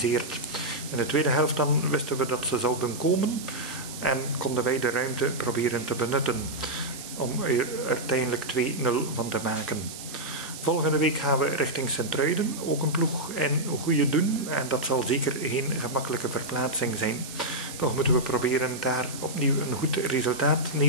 In de tweede helft dan wisten we dat ze zouden komen en konden wij de ruimte proberen te benutten om er uiteindelijk 2-0 van te maken. Volgende week gaan we richting Sint-Truiden, ook een ploeg in goede doen. En dat zal zeker geen gemakkelijke verplaatsing zijn. Toch moeten we proberen daar opnieuw een goed resultaat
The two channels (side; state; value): right; noise; hiss, 12 dB below the sound